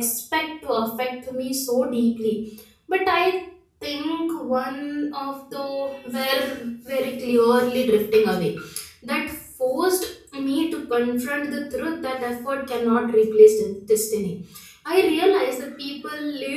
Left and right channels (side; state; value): both; identical; correlation 1.00